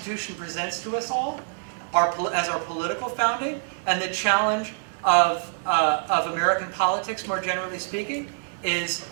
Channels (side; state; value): left; silent; digital silence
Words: presents to us all as our political founding, and the challenge of American politics more generally speaking, is